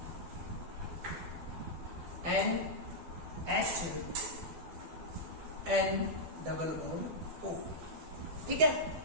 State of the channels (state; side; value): late; left; 12 ms